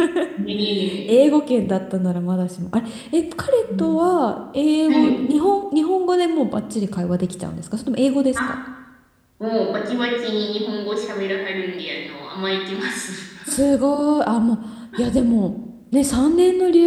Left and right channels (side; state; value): both; identical; correlation 1.00